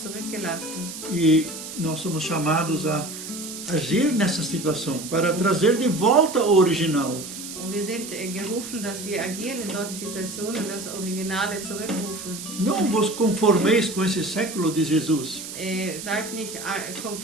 zurückgelassen. E nós somos chamados a agir nessa situação, para trazer de volta o original. Und wir sind gerufen, dass wir agieren in solchen Situationen und das Originale zurückrufen. Não vos conformeis com esse século de Jesus. Seid nicht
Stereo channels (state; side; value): noise; right; hiss, 10 dB below the sound